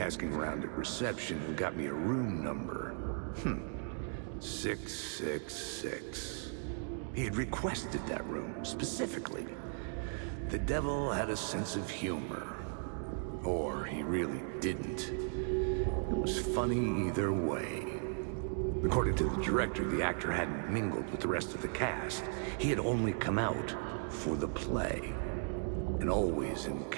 around at reception got me a room number. 666. He had requested that room, specifically. The devil had a sense of humor. Or he really didn't. It was funny either way. According to the director, the actor hadn't mingled with the rest of the cast. He had only come out for the play, and always in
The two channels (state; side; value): silent; left; 53 dB below the other